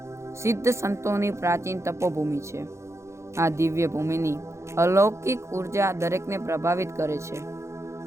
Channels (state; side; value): late; left; 0.14 ms